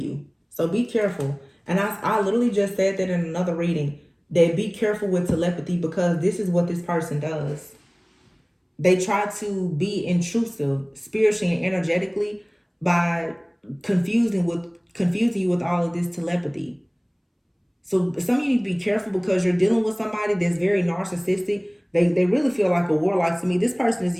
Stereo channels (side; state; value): both; identical; correlation 1.00